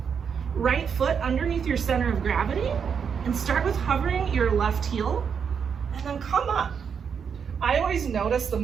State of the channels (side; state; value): left; quieter; 6.8 dB